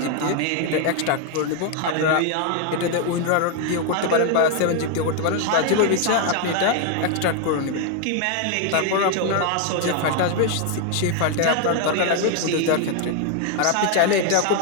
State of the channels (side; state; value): both; different; correlation 0.00